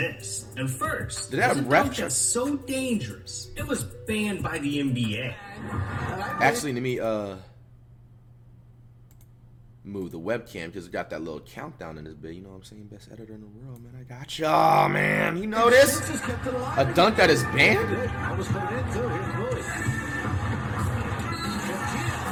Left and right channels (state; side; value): identical; both; correlation 1.00